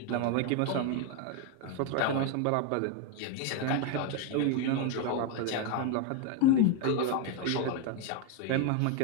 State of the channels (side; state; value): both; different; correlation 0.01